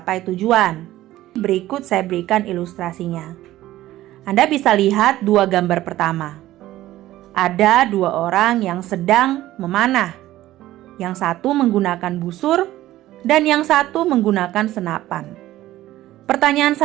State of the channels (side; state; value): left; quieter; 15.1 dB